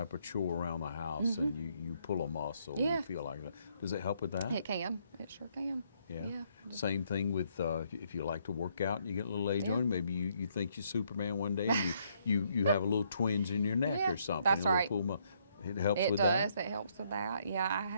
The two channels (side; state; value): both; inverted; correlation -0.71